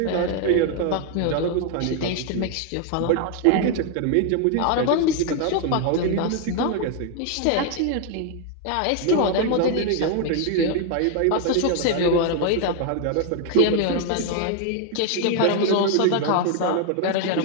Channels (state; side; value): different; both; correlation 0.01